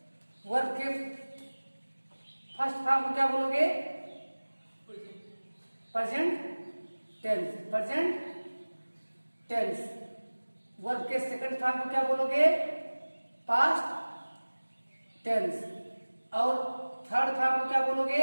वर्ब के फर्स्ट फॉर्म को क्या बोलोगे? Present tense, present tense. Verb के सेकंड फॉर्म को क्या बोलोगे? Past tense. और थर्ड फॉर्म को क्या बोलोगे?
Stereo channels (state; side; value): inverted; both; correlation -1.00